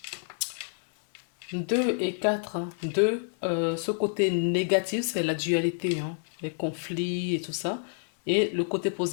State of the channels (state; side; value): silent; right; digital silence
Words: 2 et 4, 2, ce côté négatif, c'est la dualité, hein, les conflits et tout ça. Et le côté